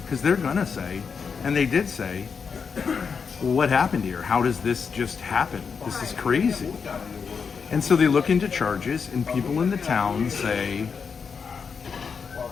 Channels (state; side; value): quieter; right; 5.9 dB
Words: Because they're gonna say, and they did say, well, what happened here? How does this just happen? This is crazy. And so they look into charges, and people in the town say,